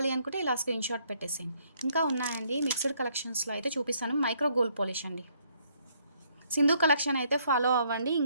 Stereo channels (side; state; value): both; inverted; correlation -0.68